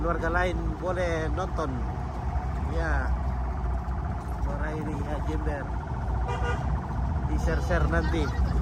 lain boleh nonton. Ya. Suara ini ya Jember. Di-share nanti.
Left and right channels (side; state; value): both; identical; correlation 1.00